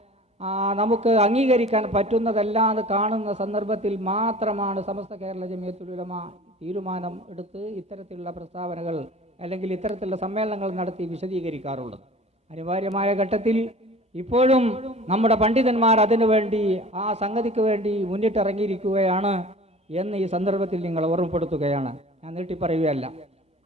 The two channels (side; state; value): both; normal; correlation 0.42